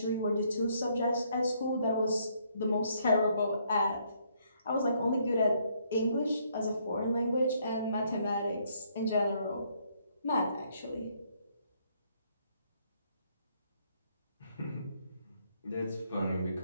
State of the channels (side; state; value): both; inverted; correlation -0.70